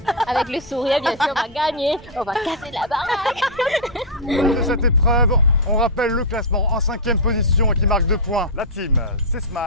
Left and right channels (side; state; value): both; normal; correlation -0.06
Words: Avec le sourire, bien sûr, on va gagner. On va casser la baraque. De cette épreuve, on rappelle le classement en 5e position et qui marque 2 points. La team, c'est